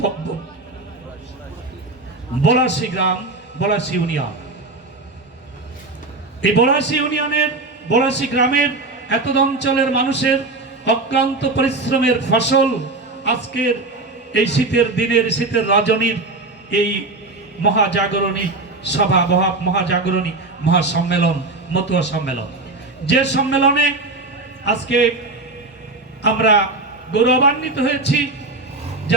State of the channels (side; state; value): left; quieter; 3.2 dB